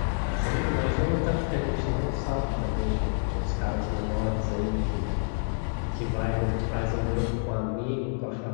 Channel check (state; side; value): silent; right; digital silence